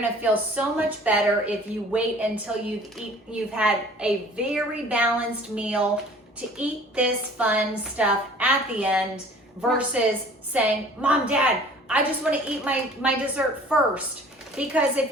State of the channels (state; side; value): normal; both; correlation 0.49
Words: to feel so much better if you wait until you've had a very balanced meal to eat this fun stuff at the end versus saying, Mom, Dad, I just want to eat my dessert first. Because if